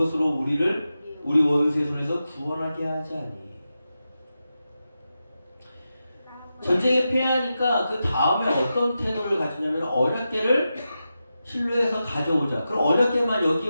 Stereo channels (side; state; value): both; inverted; correlation -0.90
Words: 우리를 우리 원수의 손에서 구원하게 하지 아니. 전쟁에 패하니까 그 다음에 어떤 태도를 가지냐면 언약궤를 실로에서 가져오자. 그럼 언약궤만 여기에